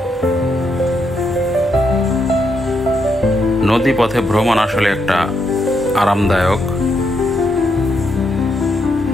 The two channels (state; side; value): normal; both; correlation 0.79